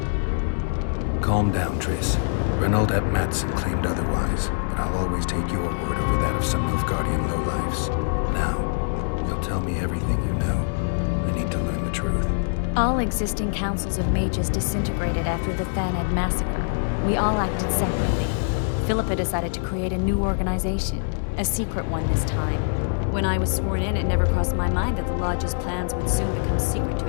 Calm down, Triss. Reynold ep Matson claimed otherwise, but I'll always take your word over that of some Nilfgaardian lowlifes. Now, you'll tell me everything you know. I need to learn the truth. All existing councils of mages disintegrated after the Thaned massacre. We all acted separately. Philippa decided to create a new organization, a secret one this time. When I was sworn in, it never crossed my mind that the Lodge's plans would soon become secret to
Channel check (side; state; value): right; silent; digital silence